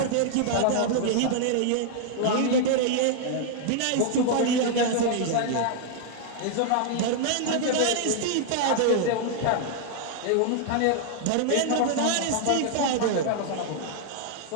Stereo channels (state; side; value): different; both; correlation 0.00